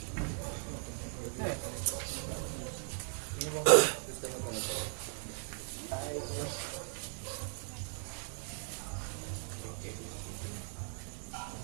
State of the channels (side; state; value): left; silent; 53 dB below the other